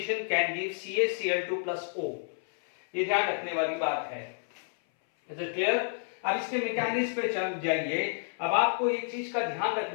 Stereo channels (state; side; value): silent; right; 58 dB below the other